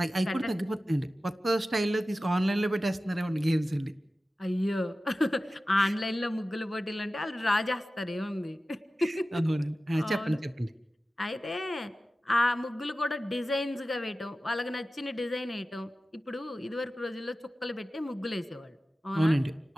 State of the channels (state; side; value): normal; both; correlation 0.95